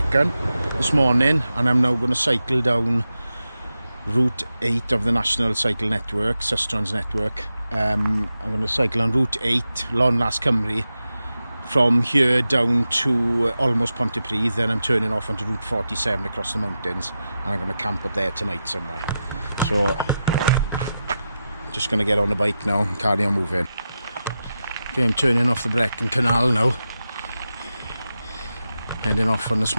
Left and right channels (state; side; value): inverted; both; correlation -0.91